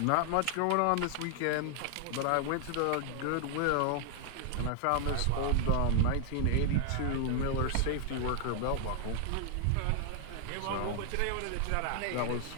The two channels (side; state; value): both; different; correlation 0.00